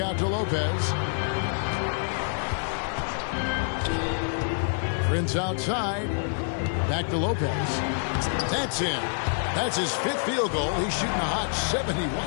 to Lopez. Prince outside. Back to Lopez. That's in. That's his 5th field goal. He's shooting a hot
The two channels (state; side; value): silent; right; digital silence